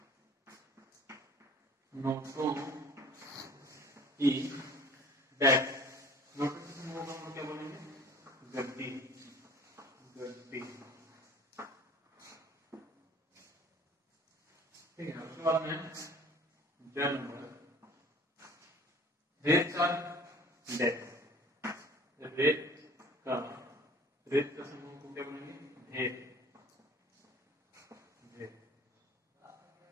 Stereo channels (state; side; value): normal; both; correlation 0.48